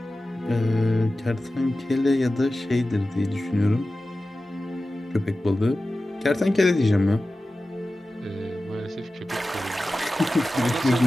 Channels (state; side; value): normal; both; correlation 0.95